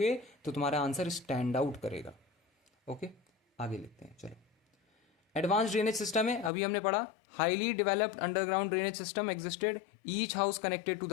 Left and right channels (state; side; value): drops out; right; at 6.5 s